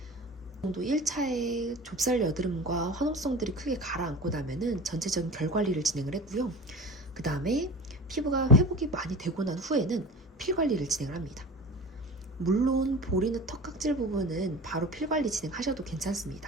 정도 1차에 좁쌀 여드름과 화농성들이 크게 가라앉고 나면은 전체적인 결 관리를 진행을 했고요. 그 다음에 피부가 회복이 많이 되고 난 후에는 필 관리를 진행을 합니다. 물론 볼이나 턱각질 부분은 바로 필 관리 진행하셔도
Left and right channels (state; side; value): normal; both; correlation 0.34